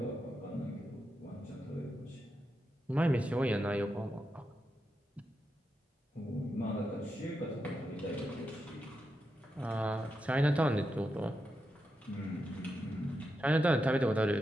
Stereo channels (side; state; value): both; normal; correlation 0.86